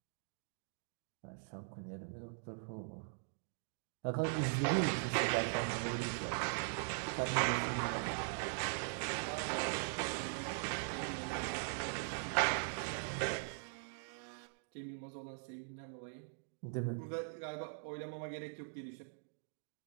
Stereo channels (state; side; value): silent; left; digital silence